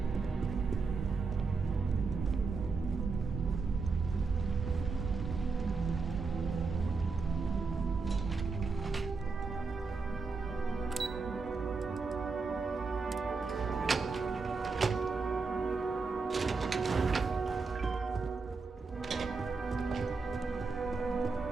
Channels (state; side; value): quieter; left; 4.4 dB